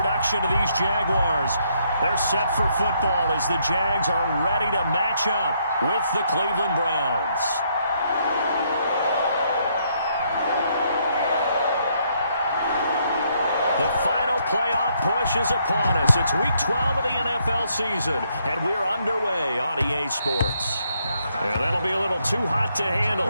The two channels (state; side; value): inverted; both; correlation -0.73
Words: of these Jaguars. They're set for football as the Jags are ready to match up with the Cleveland Browns. The final playoff push is upon us. It's Week 12 of the NFL season, and we're underway on EA Sports. And that'll be a little too hot to handle